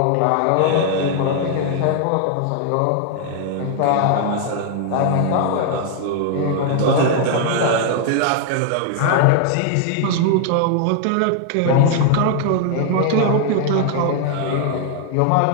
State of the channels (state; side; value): different; both; correlation 0.00